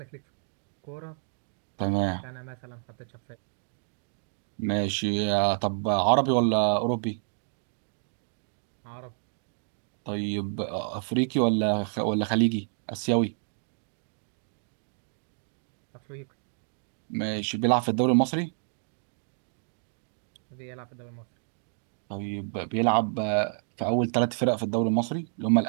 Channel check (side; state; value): left; silent; digital silence